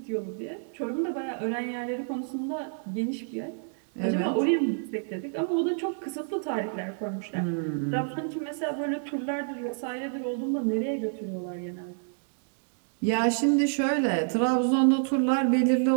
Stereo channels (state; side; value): silent; left; digital silence